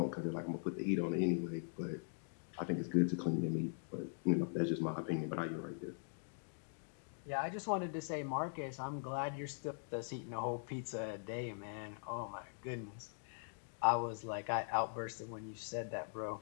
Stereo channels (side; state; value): right; silent; digital silence